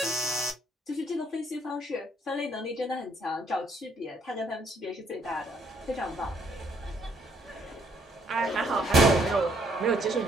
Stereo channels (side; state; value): both; normal; correlation 0.68